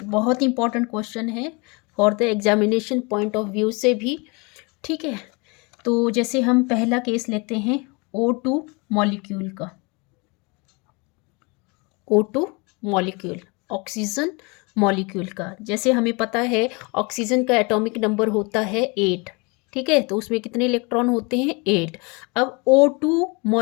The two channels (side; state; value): right; quieter; 29.2 dB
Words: बहुत इंपॉर्टेंट क्वेश्चन है for the examination point of view से भी, ठीक है। तो जैसे हम पहला केस लेते हैं O2 मॉलिक्यूल का। O2 मॉलिक्यूल, ऑक्सीजन मॉलिक्यूल का। जैसे हमें पता है ऑक्सीजन का एटॉमिक नंबर होता है 8, ठीक है। तो उसमें कितने इलेक्ट्रॉन होते हैं, 8। अब O2